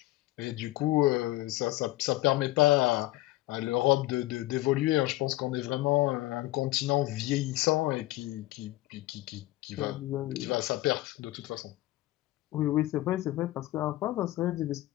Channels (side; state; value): right; quieter; 17.4 dB